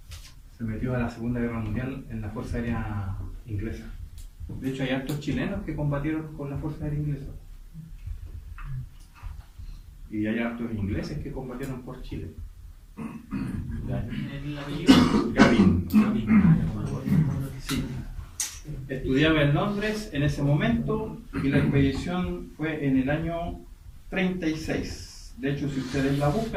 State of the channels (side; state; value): both; identical; correlation 1.00